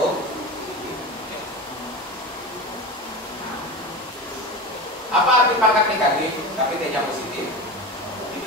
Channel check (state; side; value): normal; both; correlation 0.26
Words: Apa arti pangkat negatif tapi T-nya positif? Itu